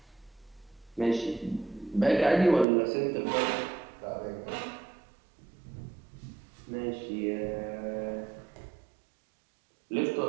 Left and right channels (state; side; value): drops out; left; at 2.7 s